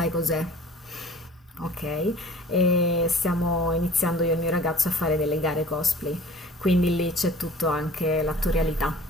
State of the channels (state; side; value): normal; both; correlation 0.46